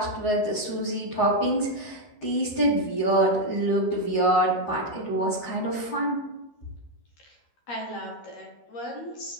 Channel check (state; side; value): late; right; 13 ms